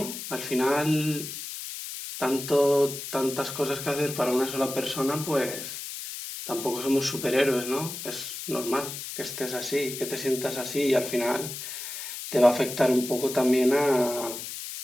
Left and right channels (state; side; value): noise; left; hiss, 8 dB below the sound